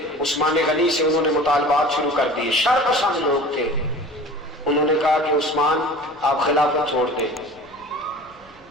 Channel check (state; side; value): noise; left; rumble, 28 dB below the sound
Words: عثمان غنی سے انہوں نے مطالبات شروع کر دیے، شر پسند لوگ تھے۔ انہوں نے کہا کہ عثمان آپ خلافت چھوڑ دیں۔